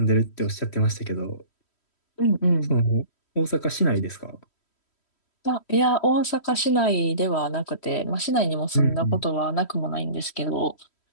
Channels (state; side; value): late; right; 3.1 ms